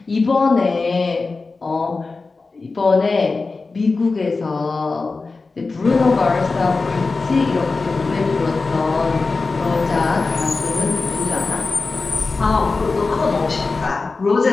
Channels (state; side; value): quieter; right; 3.9 dB